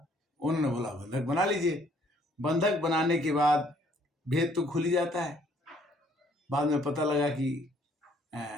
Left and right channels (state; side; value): normal; both; correlation 0.63